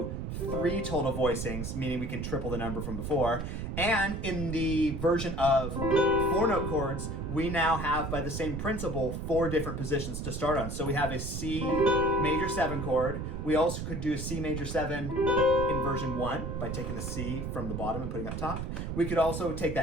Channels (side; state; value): right; noise; rumble, 4 dB below the sound